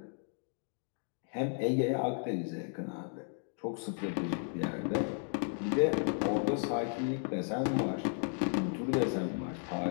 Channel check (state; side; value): silent; right; 55 dB below the other